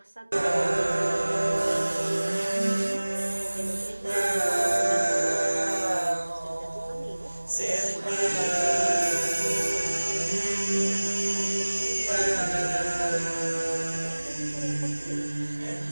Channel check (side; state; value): both; inverted; correlation -1.00